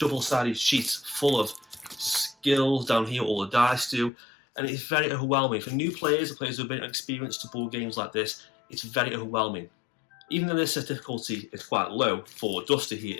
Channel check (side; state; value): right; drops out; at 4.1 s